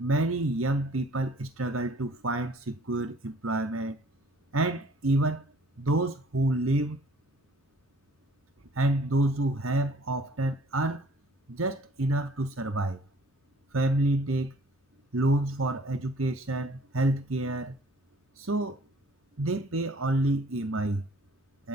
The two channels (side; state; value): both; normal; correlation 0.55